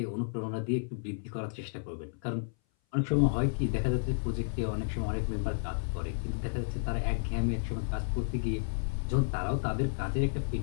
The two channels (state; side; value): silent; right; 56 dB below the other